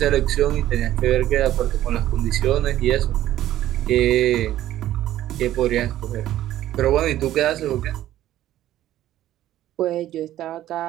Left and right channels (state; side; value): quieter; left; 13.3 dB